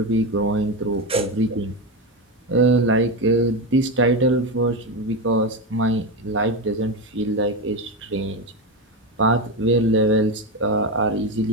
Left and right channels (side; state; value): both; normal; correlation 0.15